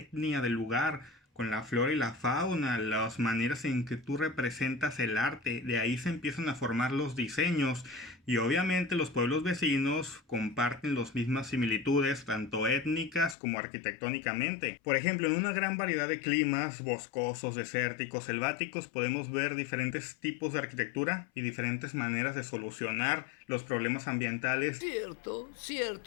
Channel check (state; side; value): drops out; right; at 13.4 s